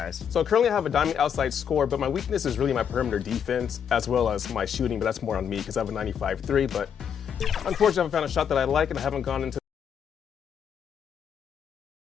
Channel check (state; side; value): quieter; right; 8.0 dB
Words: So currently I have a diamond outside score, but my weakness is really my perimeter defense as well as my shooting, but that's more on me because I have a 95-3, but unfortunately I haven't found a shot that I like and I haven't gone into.